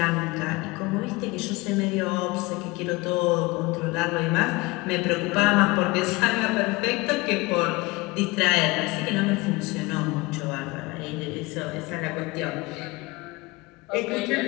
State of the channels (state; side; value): quieter; right; 23.0 dB